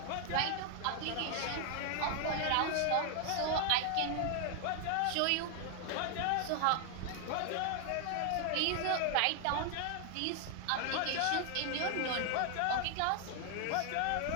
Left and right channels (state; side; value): different; both; correlation 0.00